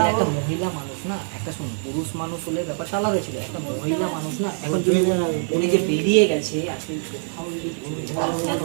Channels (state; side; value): silent; left; 63 dB below the other